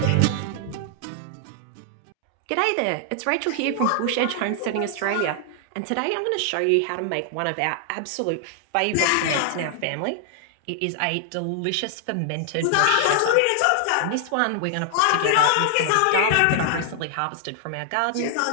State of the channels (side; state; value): both; different; correlation 0.00